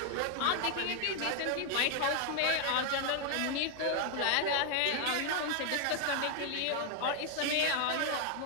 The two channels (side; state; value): both; different; correlation 0.00